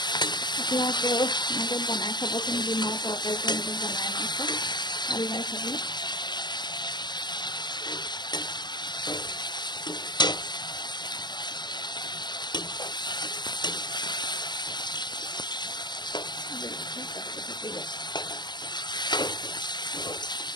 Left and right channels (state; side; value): late; right; 0.21 ms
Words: আপোনালোকেও এনেকৈ বনাই খাবচোন ডিমৰ তৰকাৰীটো এনেকৈ বনাই মাংস ভাল লাগে খাবলৈ